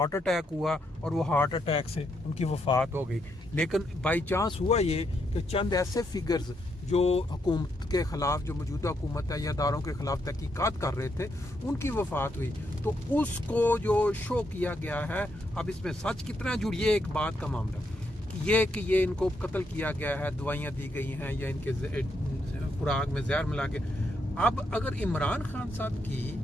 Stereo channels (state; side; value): normal; both; correlation 0.78